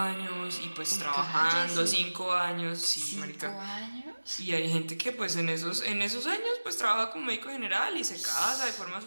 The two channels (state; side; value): inverted; both; correlation -1.00